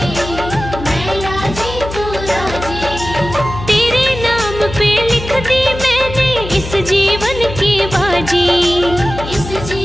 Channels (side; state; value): left; noise; hum, 9 dB below the sound